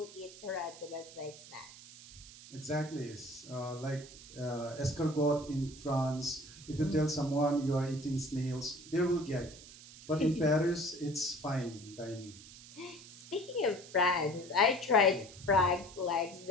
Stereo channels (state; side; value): noise; right; hiss, 18 dB below the sound